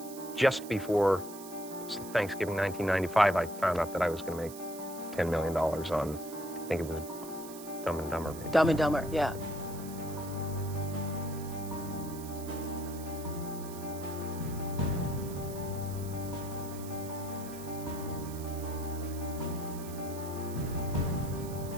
just before Thanksgiving 1995, I found out that I was going to make $10 million on, I think it was Dumb and Dumber. Maybe. Dumb and Dumber, yeah.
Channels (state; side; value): noise; right; hiss, 14 dB below the sound